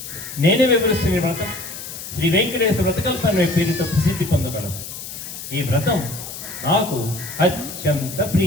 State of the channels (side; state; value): left; noise; hiss, 10 dB below the sound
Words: నేనే వివరిస్తున్న వ్రతం శ్రీ వెంకటేశ్వర వ్రతకల్పన పేరుతో ప్రసిద్ధి పొందగలదు. ఈ వ్రతం నాకు అత్యంత